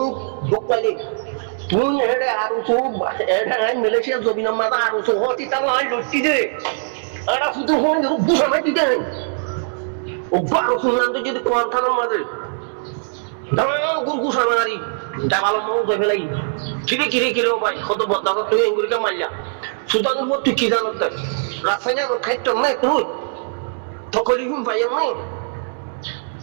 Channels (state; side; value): silent; left; digital silence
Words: বুক পাইলি তুই এড়ে আর এড়ে মালয়েশিয়া জমিনের মাঝে আর হতি তা নাই লুটি দে আর শুধু হন বুঝামাই দিতে ও বারো শুনলাম তো যদি কোন থানার মাঝে দাঁড়াও গুরগু সামারি ডাবাল মৌ ধরে ফেলাই কিরে ভাই কত বদলা তুই এঙ্গুরিকে মারলা সুদানের পর তুই কি জানো রাসায়নিক খাইত নাই তুই তকলি ভাই নাই